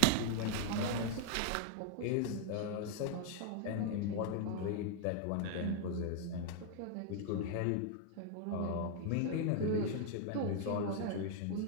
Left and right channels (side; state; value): both; different; correlation 0.00